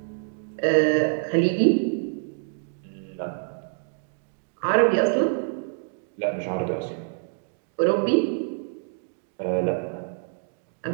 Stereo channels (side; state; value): left; silent; digital silence